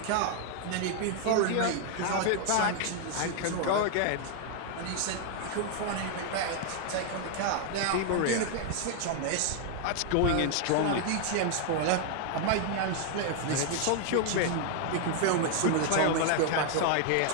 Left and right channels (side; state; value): both; different; correlation 0.00